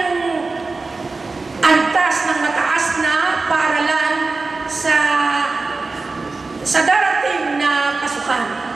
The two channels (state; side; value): quieter; left; 3.8 dB